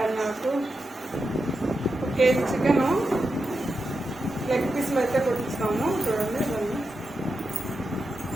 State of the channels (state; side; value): normal; both; correlation 0.88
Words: ఆకు, 1 కేజీ చికెను, లెగ్ పీసులు అయితే కొట్టిస్తాము. చూడండి ఇవన్నీ